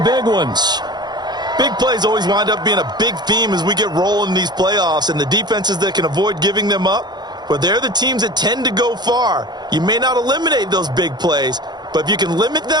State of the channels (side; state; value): left; late; 0.21 ms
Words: ones. Big plays always wind up being a big theme as we get rolling in these playoffs, and the defenses that can avoid giving them up, well, they're the teams that tend to go far. You may not eliminate those big plays, but if you can limit